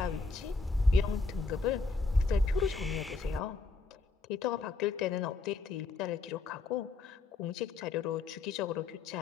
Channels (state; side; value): quieter; right; 3.9 dB